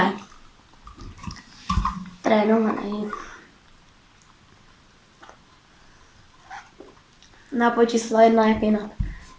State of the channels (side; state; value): both; identical; correlation 1.00